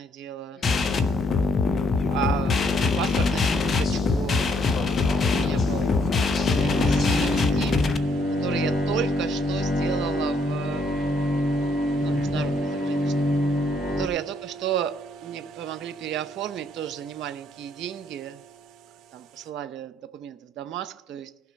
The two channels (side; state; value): both; normal; correlation 0.70